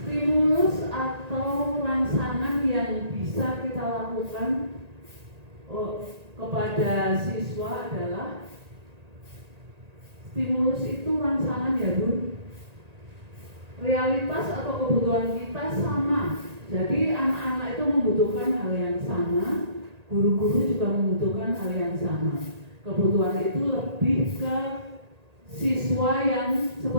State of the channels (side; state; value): left; late; 1.9 ms